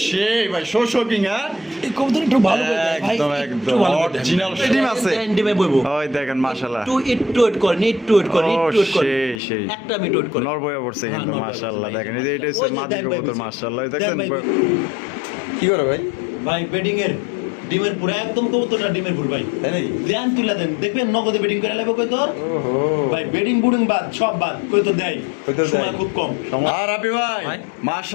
সেই ভাই শোকিং। হ্যাঁ এই কবুতর একটু ভালো করে দেয় ভাই, একদম একদম অরিজিনাল ডিম আছে। ডিমে বইবো ওই দেখেন মাশাআল্লাহ, একটু ওয়েট করেন, একটু ওয়েট করেন, একটু ওয়েট করেন, সেই সেই একটা মিনিট ওয়েট করেন। নর বয়ে পড়ছে কিন্তু হ্যাঁ, নর মাশাআল্লাহ। বয়ে দেখেন পড়ছে। এটা হচ্ছে ওই যে মাদি দেন ভাই কবুতর বুঝি। মাশাআল্লাহ। দেন দেখছেন ভাই বুঝি। কি করে ভাই? ভাই বেডিং এর ডিমের পুরো একদম কবুতরটা ডিমের পুরো ভাই, তাই নাকি? দেন তুলে দেন, দেখবেন নগদে বেডিং করে লাগবে কই তোর। ওহো ভাই বেডিং বুডিং বাদ সব বাদ, কই তো দেয় সময় খুব কম। আর আপনি ভাই ভাই।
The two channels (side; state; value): right; drops out; at 9.4 s